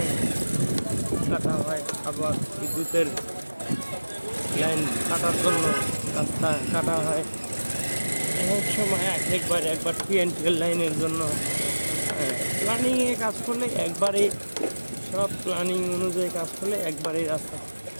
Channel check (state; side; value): inverted; both; correlation -1.00